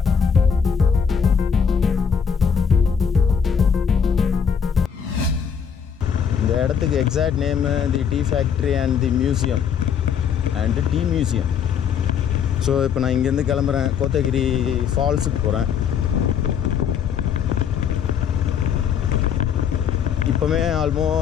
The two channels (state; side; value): quieter; right; 7.3 dB